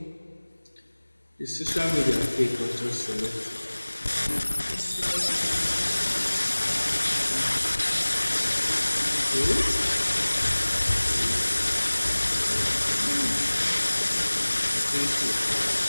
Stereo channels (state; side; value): inverted; both; correlation -1.00